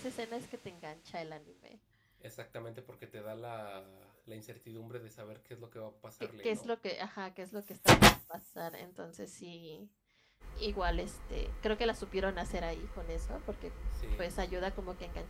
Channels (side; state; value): both; identical; correlation 1.00